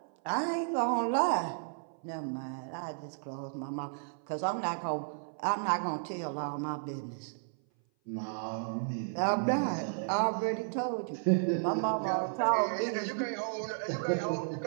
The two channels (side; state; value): left; silent; 56 dB below the other